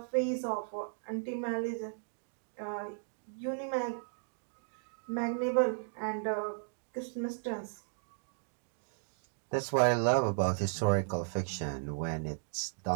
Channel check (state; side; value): silent; left; digital silence